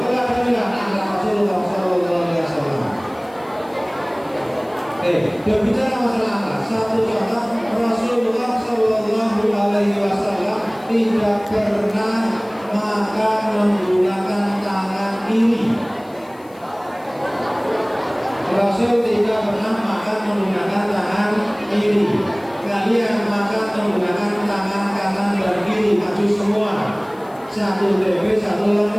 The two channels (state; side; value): noise; left; hiss, 28 dB below the sound